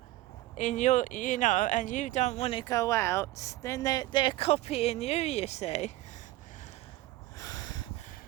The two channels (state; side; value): quieter; left; 17.2 dB